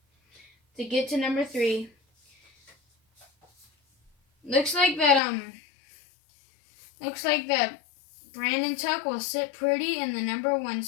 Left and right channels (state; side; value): drops out; right; at 5.2 s